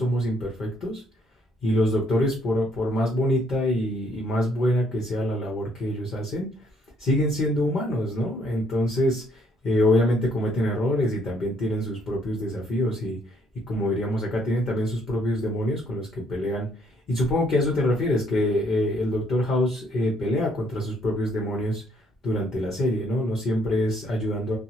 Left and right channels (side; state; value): both; normal; correlation 0.68